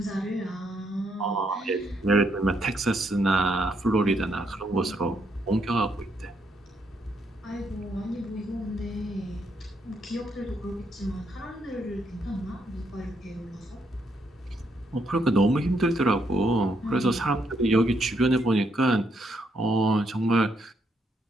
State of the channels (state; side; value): normal; both; correlation 0.75